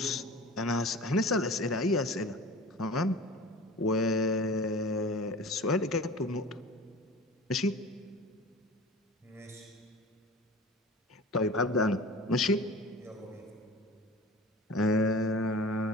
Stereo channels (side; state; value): both; normal; correlation 0.38